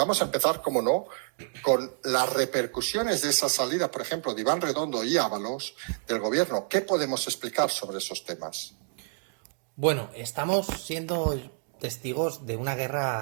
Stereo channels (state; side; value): silent; left; digital silence